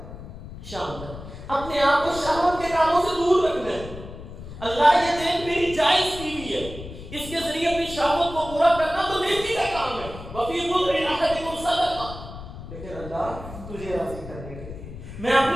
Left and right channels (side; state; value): left; noise; rumble, 12 dB below the sound